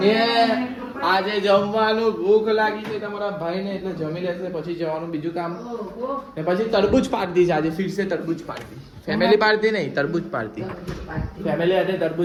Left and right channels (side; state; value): both; identical; correlation 1.00